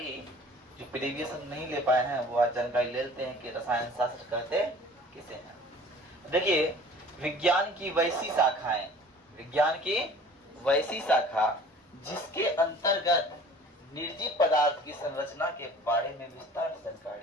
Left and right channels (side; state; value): both; normal; correlation 0.47